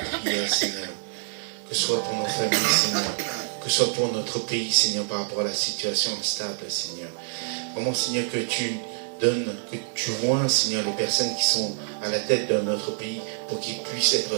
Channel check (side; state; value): left; silent; digital silence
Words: prière, Seigneur. Que ce soit pour nos familles, Seigneur. Que ce soit pour notre pays, Seigneur, par rapport à la situation instable, Seigneur. Vraiment, Seigneur, que tu donnes, que tu vois, Seigneur, les personnes qui sont à la tête de notre pays pour qu'ils puissent être